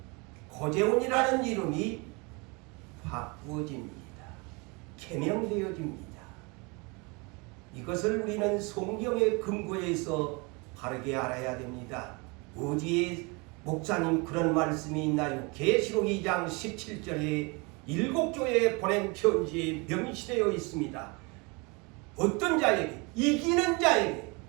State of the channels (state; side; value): quieter; left; 29.1 dB